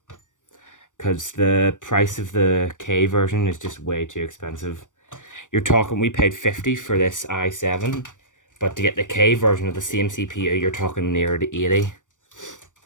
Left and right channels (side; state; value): right; late; 0.87 ms